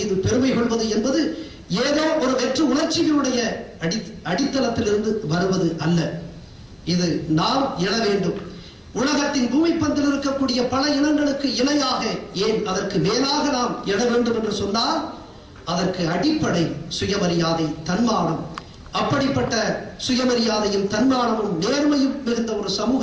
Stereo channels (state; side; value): identical; both; correlation 1.00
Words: பெருமை கொள்வது என்பது ஏதோ ஒரு வெற்று உணர்ச்சிகளுடைய அடித்தளத்திலிருந்து வருவது அல்ல. இது நாம் எழ வேண்டும். உலகத்தின் பூமி பந்தில் இருக்கக்கூடிய பல இனங்களுக்கு இணையாக, ஏன் அதற்கு மேலாக நாம் எழ வேண்டும் என்று சொன்னால் அதற்கு அடிப்படை சுயமரியாதை, தன்மானம். அப்படிப்பட்ட சுயமரியாதையும் தன்மானமும் நேர்மையும் மிகுந்த ஒரு